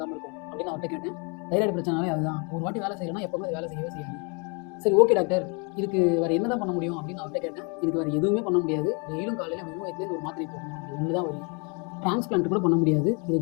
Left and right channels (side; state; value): right; quieter; 34.1 dB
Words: இருக்கும் அப்படின்னு அவர்கிட்ட கேட்டேன். தைராய்டு பிரச்சனாலே அதுதான், ஒரு வாட்டி வேலை செய்யணும்னா எப்போவுமே அது வேலை செய்யவே செய்யாது. சரி, ஓகே டாக்டர், இதுக்கு வேறு என்ன தான் பண்ண முடியும் அப்படின்னு அவர்கிட்ட கேட்டேன். இதுக்கு வேறு எதுவுமே பண்ண முடியாது, டெய்லியும் காலையில் வெறும் வயிற்றுலேருந்து ஒரு மாத்திரை போடணும், அது ஒன்று தான் வரும். டிரான்ஸ்பிளான்ட் கூட பண்ண முடியாது, இது